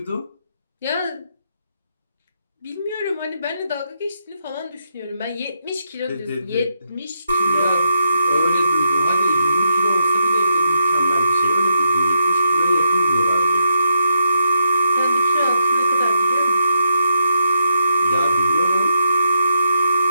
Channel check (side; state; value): both; inverted; correlation -0.81